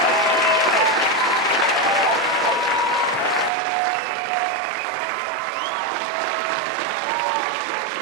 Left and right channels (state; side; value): drops out; left; at 3.5 s